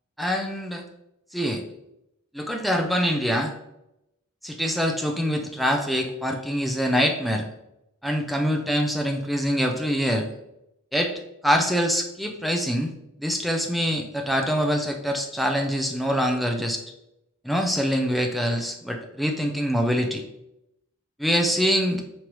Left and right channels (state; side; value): normal; both; correlation 0.75